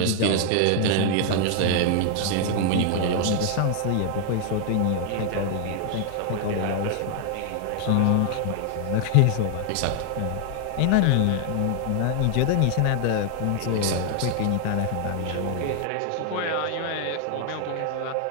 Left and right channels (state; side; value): different; both; correlation 0.00